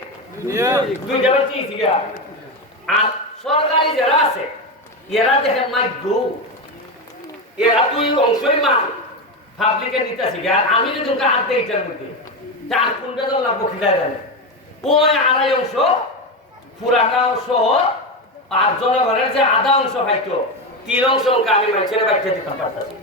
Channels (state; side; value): normal; both; correlation 0.15